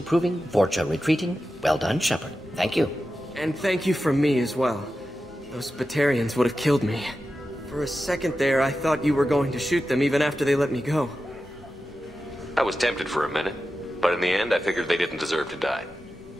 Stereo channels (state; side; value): normal; both; correlation 0.92